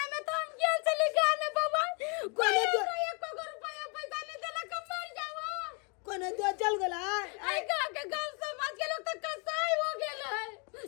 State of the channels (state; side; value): quieter; right; 35.3 dB